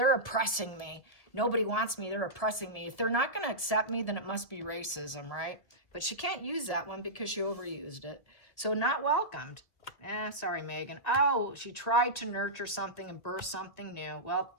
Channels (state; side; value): late; right; 1.8 ms